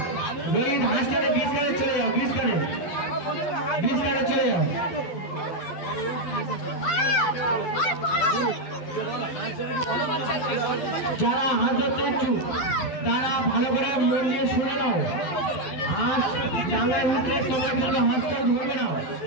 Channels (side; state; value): right; late; 12 ms